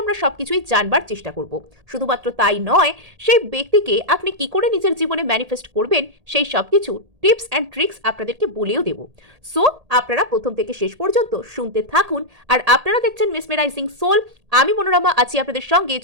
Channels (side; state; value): left; late; 1.8 ms